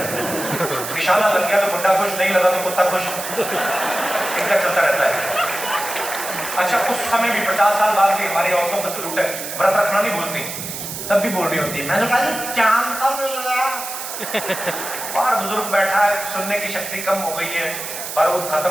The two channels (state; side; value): noise; right; hiss, 7 dB below the sound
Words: निशाना लग गया तो बुड्ढा खुश, नहीं लगा तो कुत्ता खुश, इनका चलता रहता है। अच्छा, उस समय भी 50 साल बाद भी हमारी औरतों का सलूट है, व्रत रखना नहीं भूलती, तब भी बोल रही होती है, मैंने कहा चांद कब मिल गया? बाहर बुजुर्ग बैठा है, सुनने की शक्ति कम हो गई है, बारूद